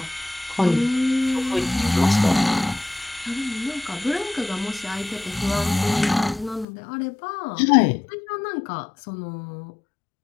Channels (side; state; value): right; drops out; at 6.7 s